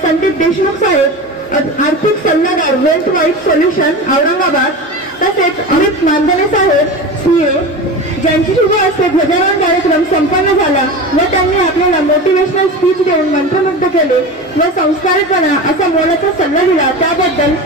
संदीप देशमुख साहेब, आर्थिक सल्लागार वेल्थ वाईट सोल्युशन औरंगाबाद, तसेच अमित मांजरे साहेब CA, ज्यांची शुभ हस्ते ध्वजारोहण कार्यक्रम संपन्न झाला व त्यांनी आपल्याला मोटिवेशनल स्पीच देऊन मंत्रमुग्ध केले व संस्कारपणा असा मोलाचा सल्ला दिला. त्याबद्दल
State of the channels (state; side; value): normal; both; correlation 0.28